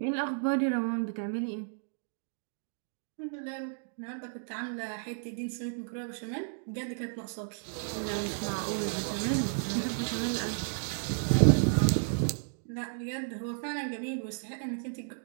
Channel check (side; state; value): left; silent; digital silence